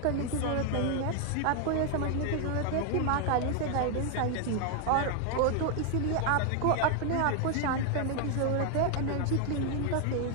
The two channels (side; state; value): both; different; correlation 0.00